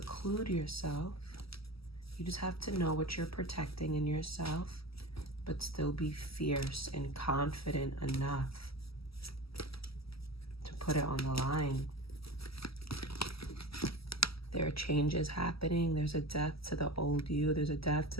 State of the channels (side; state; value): right; late; 0.76 ms